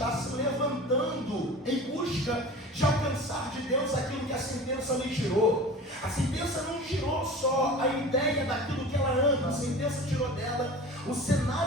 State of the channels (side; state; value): both; normal; correlation 0.37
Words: se levantando em busca de alcançar de Deus aquilo que a sentença lhe tirou. A sentença não tirou só a ideia daquilo que ela ama, a sentença tirou dela o